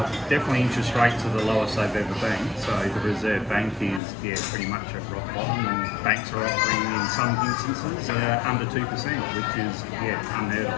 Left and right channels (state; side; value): drops out; right; at 4.0 s